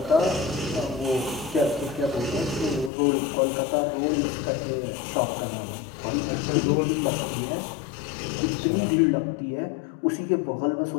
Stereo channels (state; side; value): drops out; right; at 2.9 s